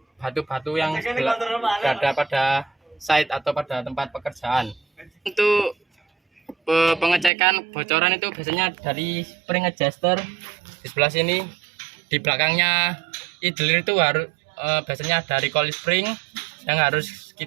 batu-batu yang berada pada site atau pada tempat pekerjaan. Untuk pengecekan bocoran itu biasanya dari spring adjuster di sebelah sini, di belakangnya idler itu harus biasanya ada recoil spring yang harus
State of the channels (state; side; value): drops out; left; at 7.3 s